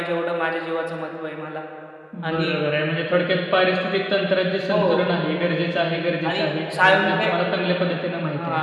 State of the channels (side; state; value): both; identical; correlation 1.00